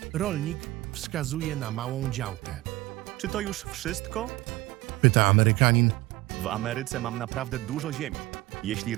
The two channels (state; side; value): quieter; left; 18.6 dB